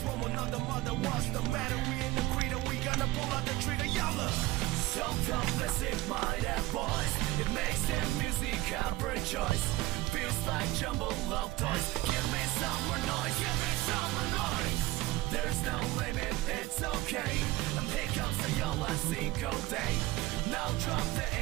from another mother. What's the matter? We in the creed and we gonna pull out the trigger, yalla. Self-confessing mind and voice, it makes their music every choice. Feels like jumbled love toys. Give me some more noise, give me some more noise. There's no limit, it's okay. And here comes the Yola single day. Now drop the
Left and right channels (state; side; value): quieter; left; 18.0 dB